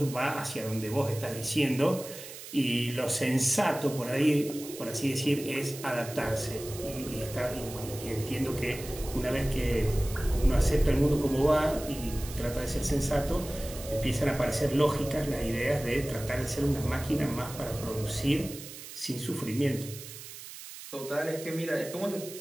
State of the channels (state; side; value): noise; right; hiss, 13 dB below the sound